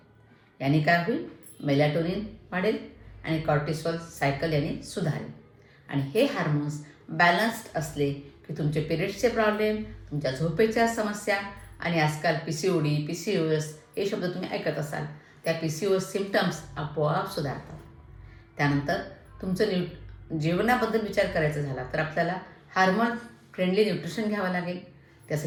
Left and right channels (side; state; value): both; identical; correlation 1.00